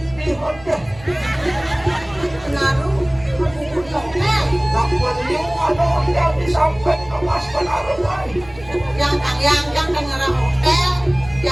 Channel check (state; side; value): noise; right; hum, 20 dB below the sound